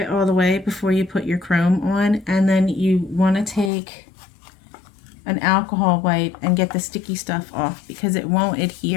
all the way before you put your chrome on, and then you want to take an alcohol wipe and get the sticky stuff off because it won't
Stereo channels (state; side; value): drops out; right; at 3.7 s